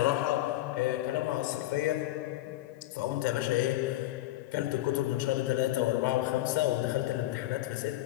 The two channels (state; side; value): quieter; right; 15.8 dB